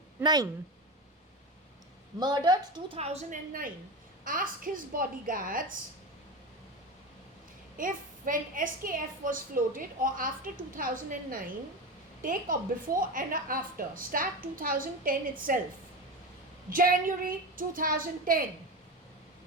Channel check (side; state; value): both; normal; correlation 0.23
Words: Murdered 2009. Ask his bodyguards if when SKF was floated or after 2009, take a before and a after. Start 2010 itself. January 2010.